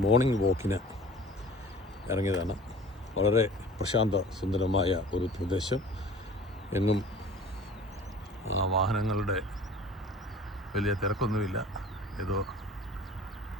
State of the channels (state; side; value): normal; both; correlation 0.44